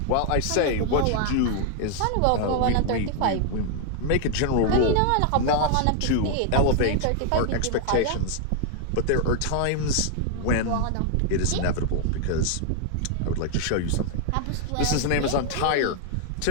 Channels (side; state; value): both; different; correlation 0.00